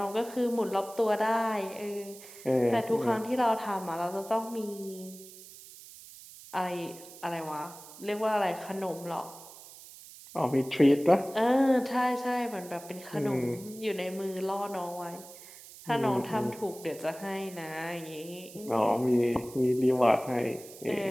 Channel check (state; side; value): noise; right; hiss, 17 dB below the sound